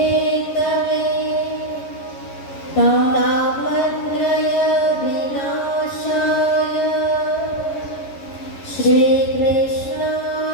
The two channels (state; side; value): late; right; 11 ms